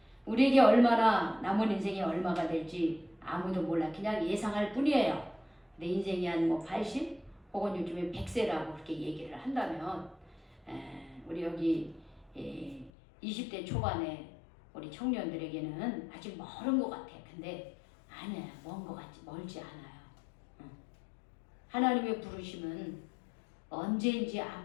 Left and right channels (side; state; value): right; drops out; at 12.9 s